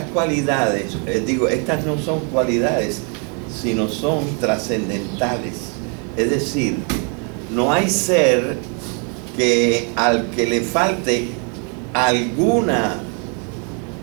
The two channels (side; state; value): left; quieter; 38.5 dB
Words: cualidades, estas no son cualidades, sino son trascendentales. Es decir, no hay ser que al que le falte alguna